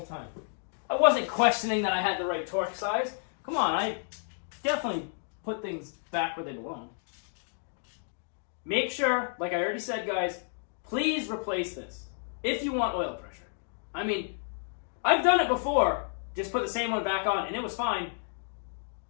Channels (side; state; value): right; silent; digital silence